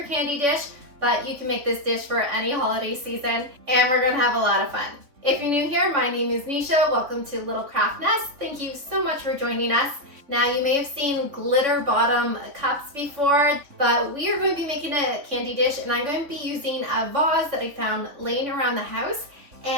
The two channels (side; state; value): left; late; 3.7 ms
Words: candy dish, but you can make this dish for any holiday season, and we're going to have a lot of fun. If you're new here, my name is Nisha. Welcome to Little Craft Nest. Thank you so much for joining us. Now, you may have seen glitter bottom cups before, but we are going to be making a candy dish, and I'm going to be using a vase that I found laying around the house,